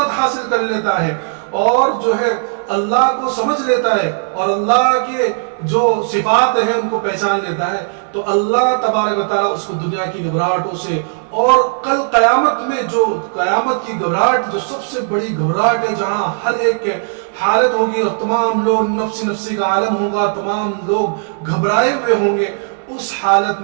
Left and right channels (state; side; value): silent; left; 61 dB below the other